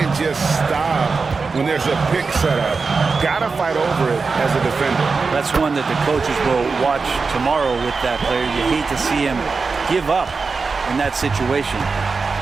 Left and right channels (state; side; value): quieter; left; 4.5 dB